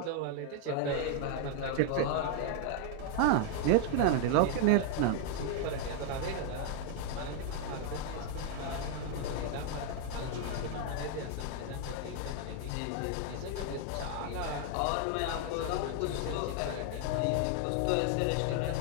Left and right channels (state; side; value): different; both; correlation 0.00